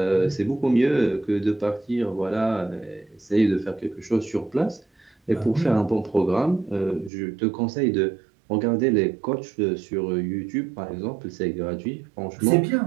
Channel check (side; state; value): left; drops out; at 7.1 s